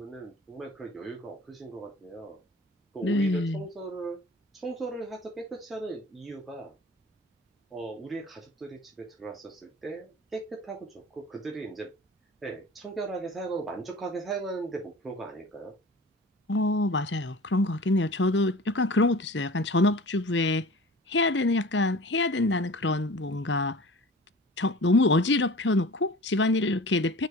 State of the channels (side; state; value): both; normal; correlation 0.40